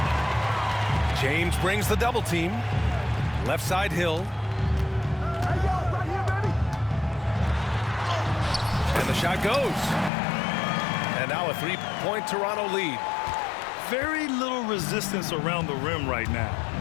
James brings the double team. Left side, Hill. And the shot goes. And now a 3-point Toronto lead. Very little resistance around the rim right now.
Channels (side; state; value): right; drops out; at 10.1 s